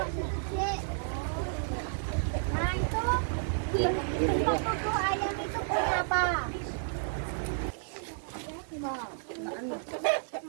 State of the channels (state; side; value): silent; left; 57 dB below the other